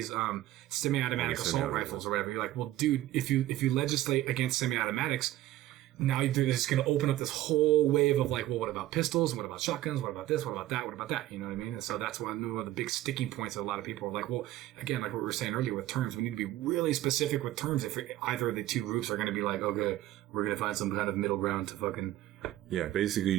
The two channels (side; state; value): left; quieter; 14.8 dB